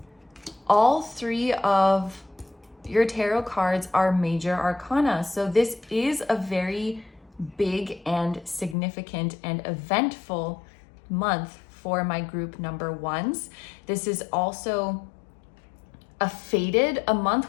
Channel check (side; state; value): right; drops out; at 8.8 s